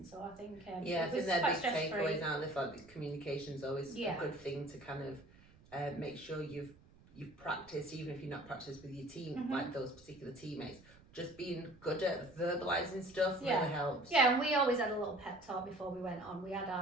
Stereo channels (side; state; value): right; noise; rumble, 25 dB below the sound